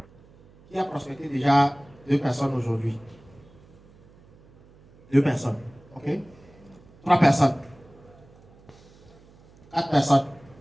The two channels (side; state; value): right; noise; hum, 26 dB below the sound